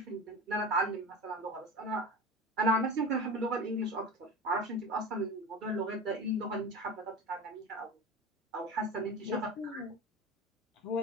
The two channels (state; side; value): normal; both; correlation 0.30